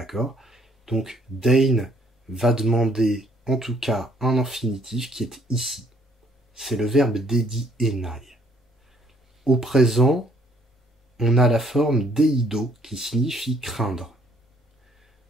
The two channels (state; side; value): normal; both; correlation 0.64